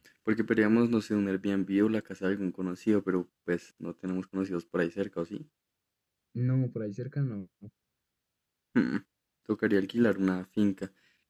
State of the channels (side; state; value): both; identical; correlation 1.00